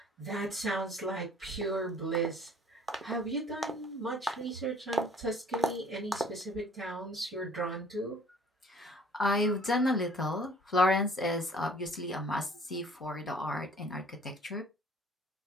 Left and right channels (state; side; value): normal; both; correlation 0.54